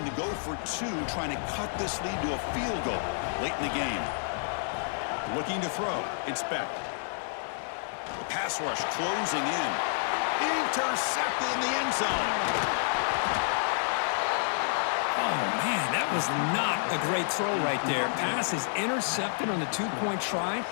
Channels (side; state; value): right; silent; 58 dB below the other